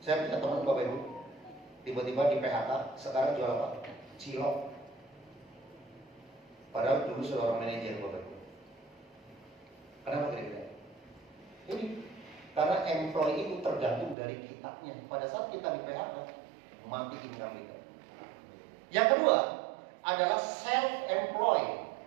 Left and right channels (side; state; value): left; drops out; at 14.2 s